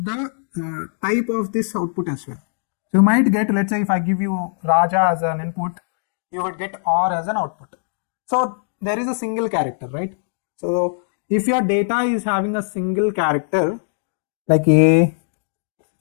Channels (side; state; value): right; silent; digital silence